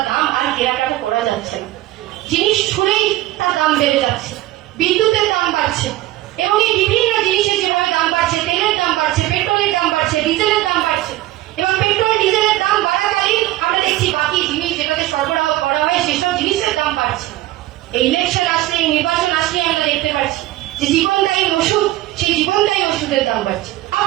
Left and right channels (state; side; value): quieter; left; 16.3 dB